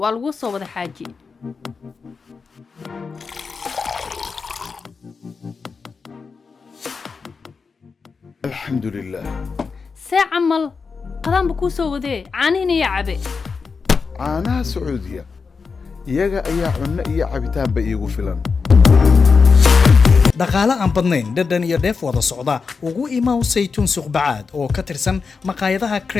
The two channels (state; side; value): quieter; right; 5.0 dB